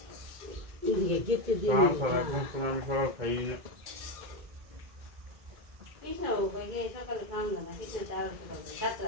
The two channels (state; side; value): late; left; 2.2 ms